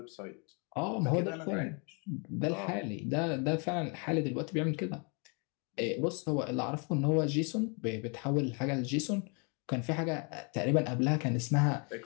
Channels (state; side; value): quieter; right; 35.0 dB